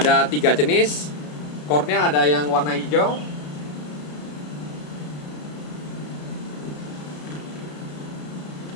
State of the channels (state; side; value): late; right; 33 ms